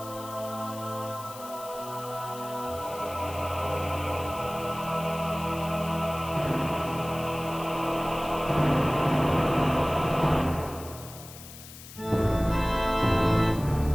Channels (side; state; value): left; noise; hiss, 16 dB below the sound